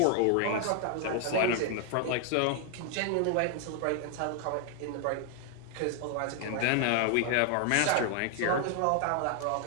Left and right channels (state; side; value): different; both; correlation 0.00